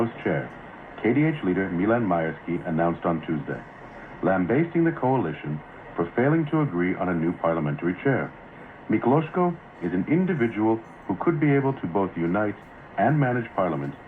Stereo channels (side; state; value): both; identical; correlation 1.00